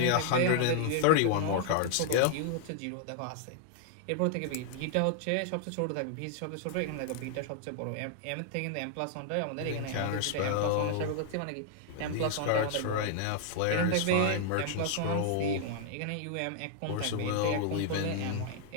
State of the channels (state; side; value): different; both; correlation 0.00